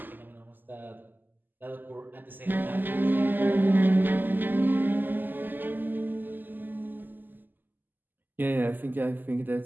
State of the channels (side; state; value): left; late; 0.089 ms